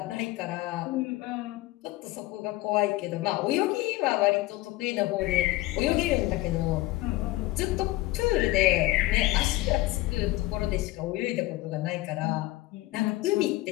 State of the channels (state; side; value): quieter; right; 18.2 dB